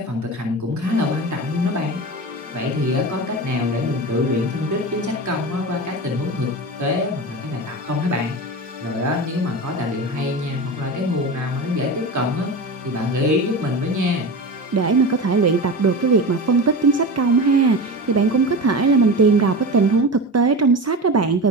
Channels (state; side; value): normal; both; correlation 0.26